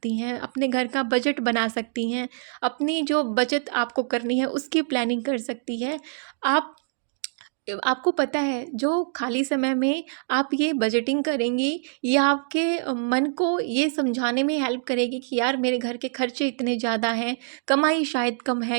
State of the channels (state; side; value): silent; left; digital silence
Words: हैं, अपने घर का बजट बना सकती हैं, अपनी जो बचत आपको करनी है उसकी प्लानिंग कर सकती है। आप आपको पता है, जो खाली समय में आप ये बजटिंग करेंगी, ये आपके मन को ये समझाने में हेल्प करेगी कि यार मेरे घर के खर्चे इतने ज़्यादा हैं, कमाई शायद कम